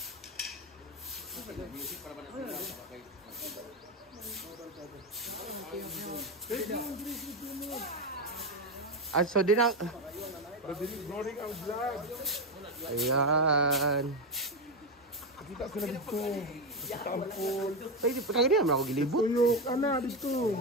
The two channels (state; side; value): normal; both; correlation 0.11